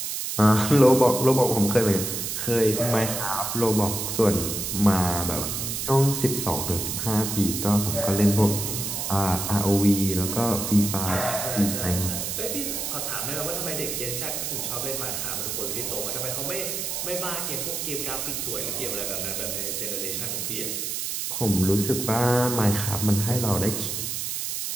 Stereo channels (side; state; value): right; noise; hiss, 3 dB below the sound